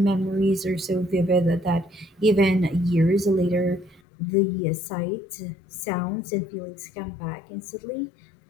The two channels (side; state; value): right; drops out; at 4.0 s